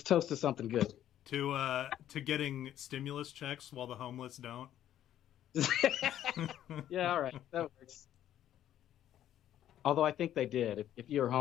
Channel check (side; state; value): right; quieter; 11.6 dB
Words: toast to something good. To getting stimulus checks while the homeless don't. Yeah, all right, that works. Although I think they did. If you were